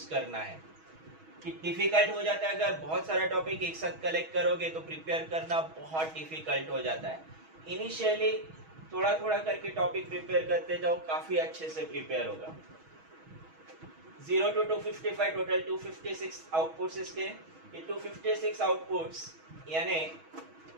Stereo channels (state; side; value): late; left; 6.2 ms